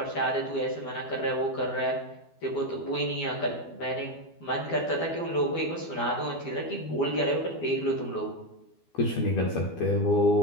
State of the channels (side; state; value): right; late; 12 ms